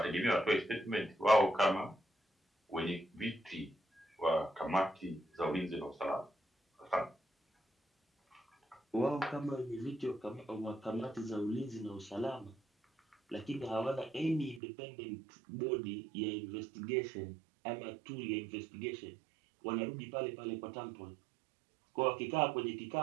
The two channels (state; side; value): drops out; left; at 14.6 s